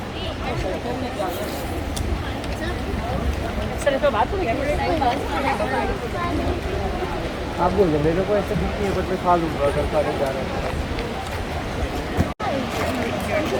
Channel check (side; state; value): both; identical; correlation 1.00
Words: आप बोल दो मेरे को ऐसे दिखनी है but मैं खा लूँगा अगर खाने जा रहा है